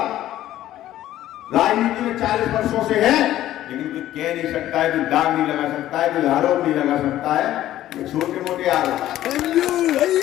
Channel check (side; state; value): right; quieter; 13.5 dB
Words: राजनीति में 40 वर्षों से है, लेकिन कोई कह नहीं सकता है, कोई दाग नहीं लगा सकता है, कोई आरोप नहीं लगा सकता है, छोटे मोटे आरोप।